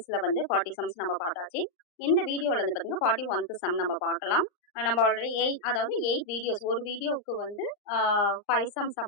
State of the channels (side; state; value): right; late; 39 ms